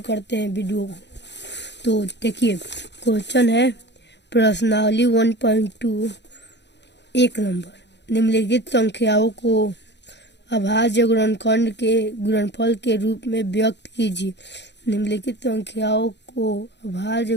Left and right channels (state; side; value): late; right; 0.51 ms